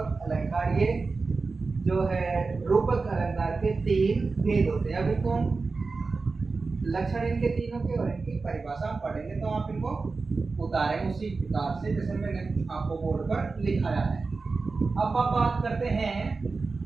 अलंकार। ये जो है रूपक अलंकार के 3 भेद होते हैं। अभी तो लक्षण इनके तीनों के और इनकी परिभाषा हम पढ़ेंगे। तो आप इनको उतारें उसी प्रकार से जैसे मैंने आपको बोर्ड पर लिखाया है। अब आप बात करते हैं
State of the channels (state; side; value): quieter; left; 4.1 dB